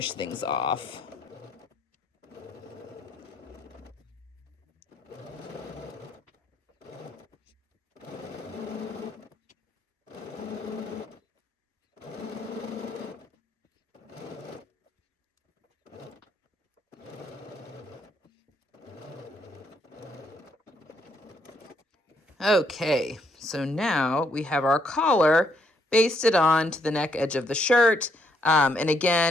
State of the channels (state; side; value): normal; both; correlation 0.72